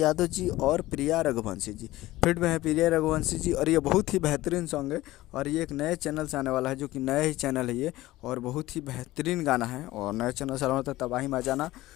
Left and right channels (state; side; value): quieter; right; 17.2 dB